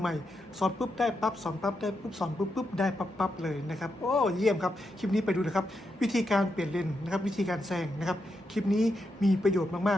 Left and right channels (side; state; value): both; normal; correlation 0.84